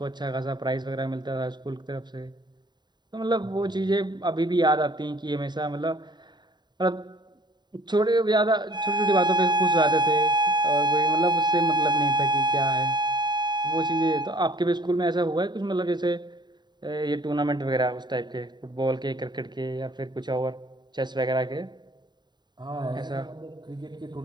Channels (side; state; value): left; late; 0.21 ms